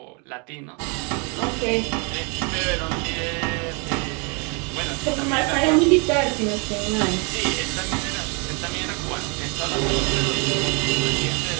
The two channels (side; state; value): left; quieter; 33.7 dB